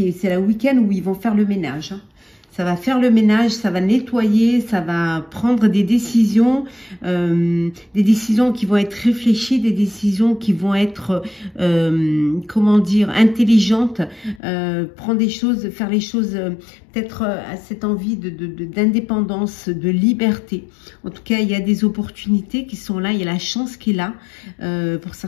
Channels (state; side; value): drops out; right; at 14.4 s